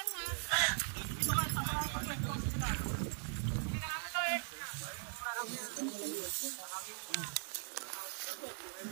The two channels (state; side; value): silent; left; 51 dB below the other